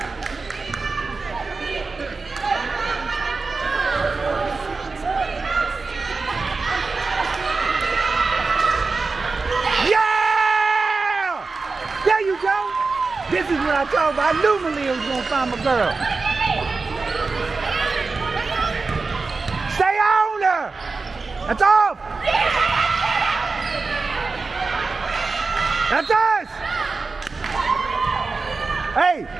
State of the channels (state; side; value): quieter; left; 4.1 dB